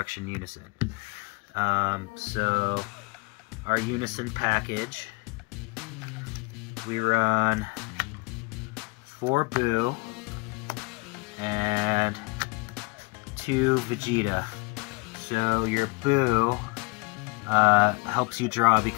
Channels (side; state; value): right; quieter; 27.5 dB